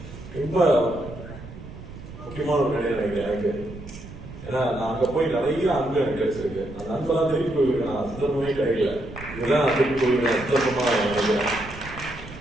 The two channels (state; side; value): noise; right; rumble, 14 dB below the sound